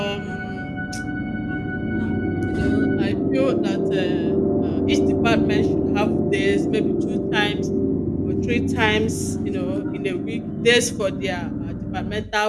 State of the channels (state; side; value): identical; both; correlation 1.00